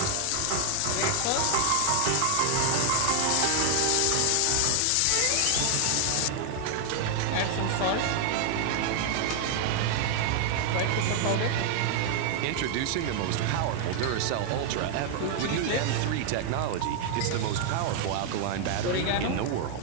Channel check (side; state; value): both; different; correlation 0.00